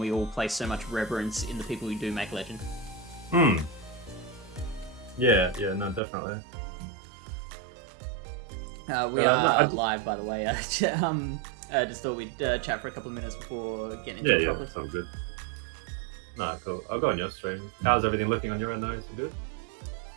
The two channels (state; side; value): drops out; left; at 6.0 s